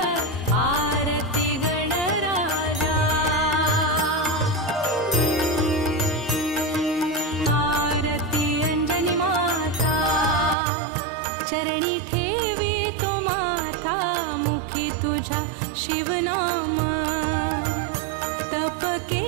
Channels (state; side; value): drops out; left; at 10.6 s